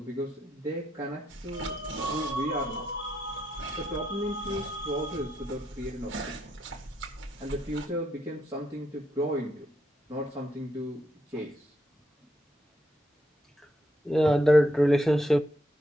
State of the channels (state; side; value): normal; both; correlation 0.78